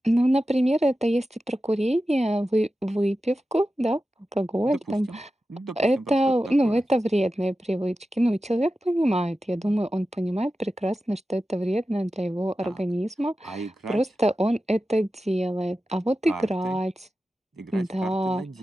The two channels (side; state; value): both; normal; correlation 0.93